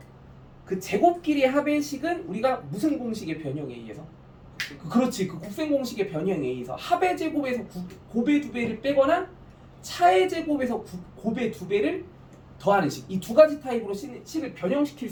그 제곱끼리의 합의 식은 우리가 무슨 공식의 변형에 의해서? 그렇지, 그 곱셈 공식의 변형에 의해서 합의 제곱에서 곱의 2배를 빼거나 차의 제곱에서 곱의 2배를 더하는 식, 이 두 가지 타입으로 식을 변형시킬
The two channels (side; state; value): both; identical; correlation 1.00